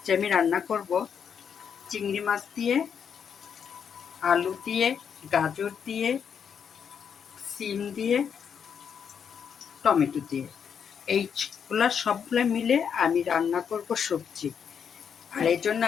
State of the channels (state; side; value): quieter; right; 7.4 dB